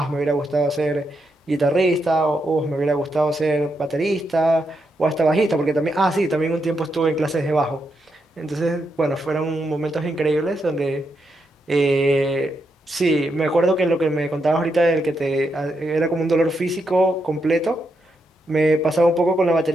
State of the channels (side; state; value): both; normal; correlation 0.82